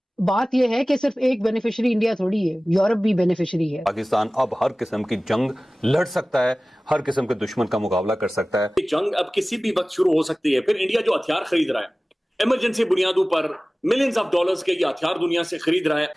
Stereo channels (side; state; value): both; normal; correlation 0.98